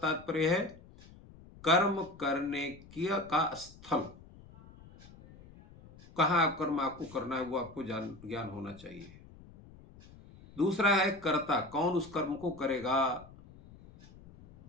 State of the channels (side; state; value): left; noise; rumble, 21 dB below the sound